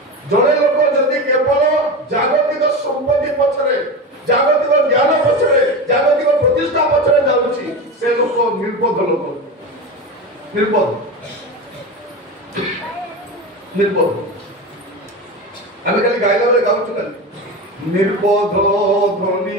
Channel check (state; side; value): normal; both; correlation 0.23